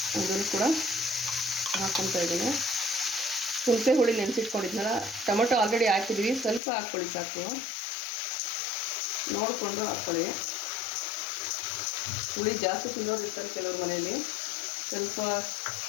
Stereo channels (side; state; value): right; drops out; at 6.6 s